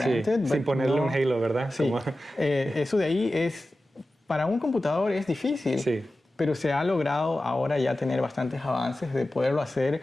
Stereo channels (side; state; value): both; normal; correlation 0.94